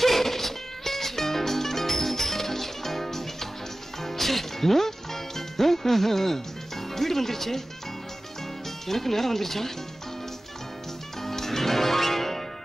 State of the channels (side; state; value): both; normal; correlation 0.97